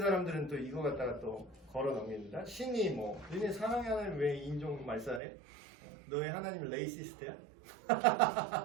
또 이거 갖다가 또 걸어 넘깁니다. 신이 뭐 너네 사랑의 하나님 왜 인종 말살해? 너의 하나님은 레이시스트야?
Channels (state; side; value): drops out; left; at 5.2 s